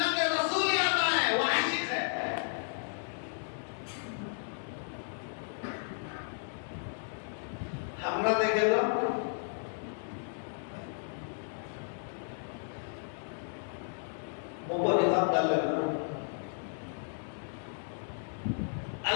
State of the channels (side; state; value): right; silent; digital silence